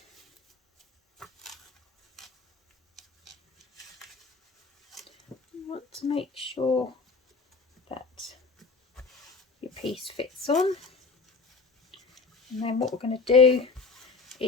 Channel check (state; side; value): quieter; right; 4.3 dB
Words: you want to make sure that your piece fits on, and then what we're going to do